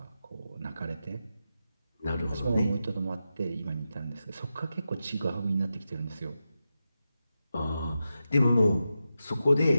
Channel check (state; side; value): inverted; both; correlation -0.90